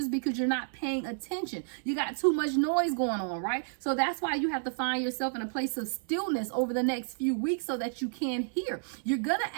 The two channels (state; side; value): silent; left; 57 dB below the other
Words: because you're not paying attention. You got too much noise going on, right? So that's why you have to find yourself in a place of stillness over the next few weeks so that you can hear. You're going to